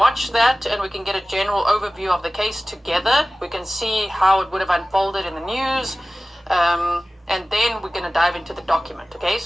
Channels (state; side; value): normal; both; correlation 0.97